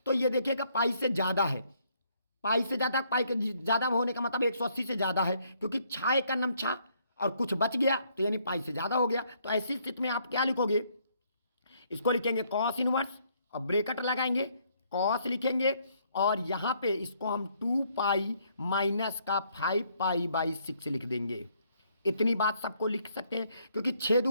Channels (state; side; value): inverted; both; correlation -0.69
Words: तो ये देखिएगा पाई से ज़्यादा है, पाई से ज़्यादा, पाई के ज़्यादा होने का मतलब 180 से ज़्यादा है, क्योंकि 6 का नम 6 और कुछ बच गया, तो यानी पाई से ज़्यादा हो गया। तो ऐसी स्थिति में आप क्या लिखोगे, इसको लिखेंगे कॉस इनवर्स और ब्रैकेट लगाएंगे, कॉस लिखेंगे, और यहाँ पे इसको हम 2 पाई माइनस का 5 पाई/6 लिख देंगे। इतनी बात सबको लिख सकते हैं, क्योंकि 6